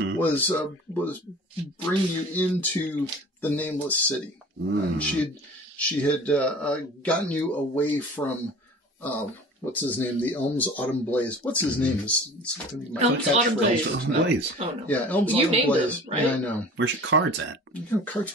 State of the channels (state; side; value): normal; both; correlation 0.42